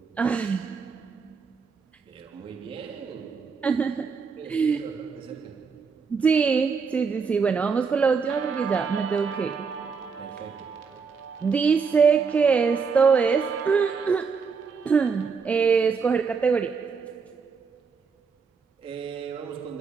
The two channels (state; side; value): quieter; left; 5.5 dB